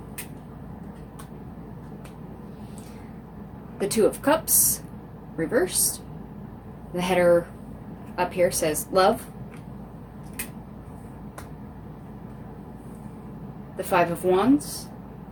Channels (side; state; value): both; identical; correlation 1.00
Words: The Two of Cups, reversed. The header up here says Love. The Five of Wands.